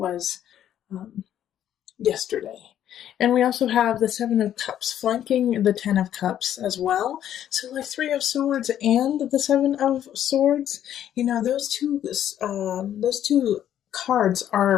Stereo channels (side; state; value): right; quieter; 10.8 dB